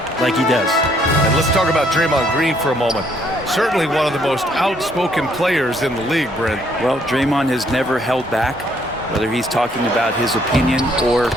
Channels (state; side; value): normal; both; correlation 0.67